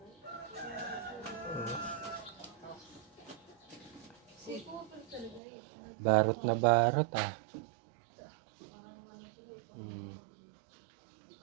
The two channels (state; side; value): drops out; left; at 5.4 s